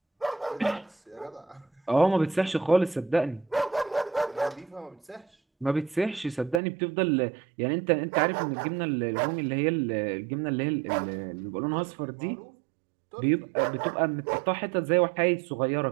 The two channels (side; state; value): left; drops out; at 6.6 s